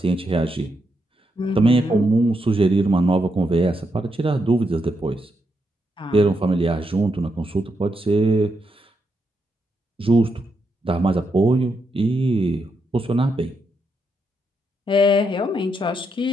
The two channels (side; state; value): both; normal; correlation 0.81